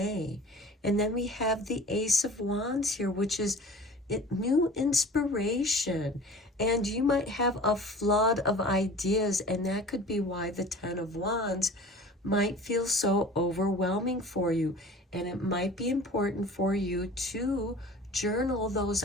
And then we have the Ace of Wands here, which is new inspiration. And you might have a flood of ideas, and that could be why the 10 of Wands might feel so overwhelming for you. And it might be important for you to journal those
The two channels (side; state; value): both; normal; correlation 0.43